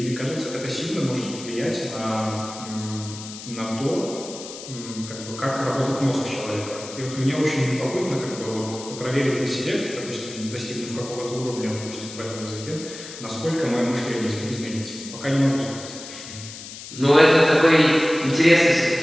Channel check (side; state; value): left; noise; hiss, 13 dB below the sound